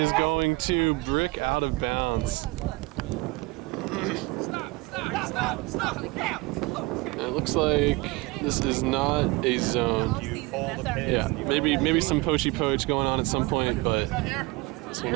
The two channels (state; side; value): quieter; left; 23.9 dB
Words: going to brick out of bounds. And it looks like this is not a zone. Yeah, maybe some poachy poach going on at some point, but this will